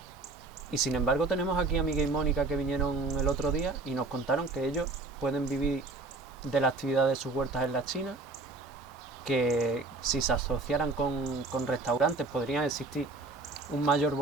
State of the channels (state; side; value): quieter; left; 3.5 dB